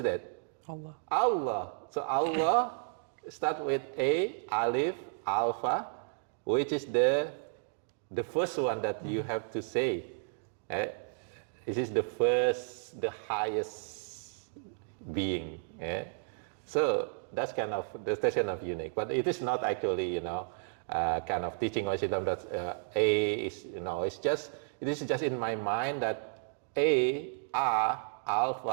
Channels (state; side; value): silent; left; digital silence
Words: Allah. Allah. So Allah start with A, alif, alpha, which is the first one that you have to say. This is the first, the highest being. So that's kind of unique, but it is not actually, kind of teaching Islam that A is, it is just in my mind that A,